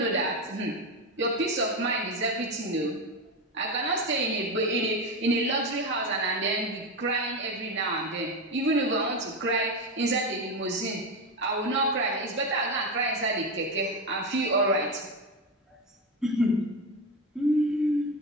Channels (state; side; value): normal; both; correlation 0.15